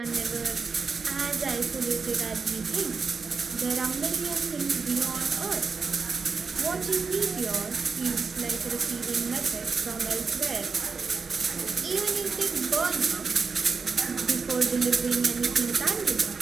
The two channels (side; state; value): left; quieter; 5.0 dB